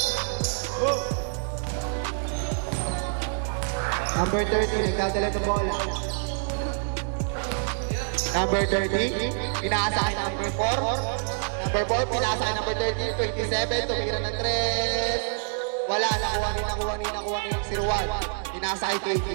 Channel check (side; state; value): left; silent; digital silence